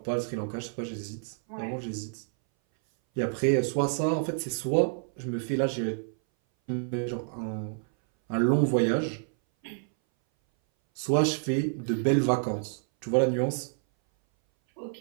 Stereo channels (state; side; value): silent; left; 58 dB below the other